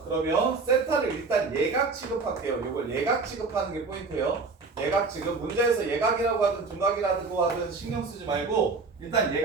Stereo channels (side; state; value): left; quieter; 4.2 dB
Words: 그러면 세타를 일단 예각 취급할게요. 이걸 예각 취급하는 게 포인트예요. 예각 취급. 문제에서 예각이라고 하든 둔각이라고 하든 신경 쓰지 말고 일단